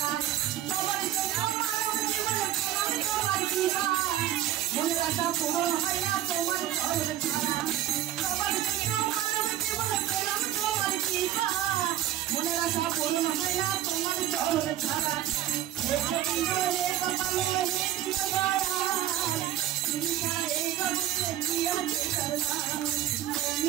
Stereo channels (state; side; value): quieter; left; 12.6 dB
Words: সবার জন্য মানব জীবনে তোমার তোমার কিনা মনে রাখা পূরণ হয় না তোমার চরণ ছাড়া সবার জন্য মানব জীবনে পেলাম তোমার কিনা মনে রাখা পূরণ হয় না তোমার চরণ ছাড়া তুমি ছাড়া এই জগতে কি আছে করলাম